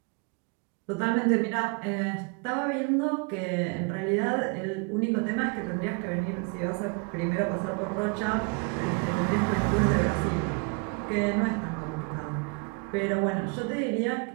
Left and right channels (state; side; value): quieter; left; 33.4 dB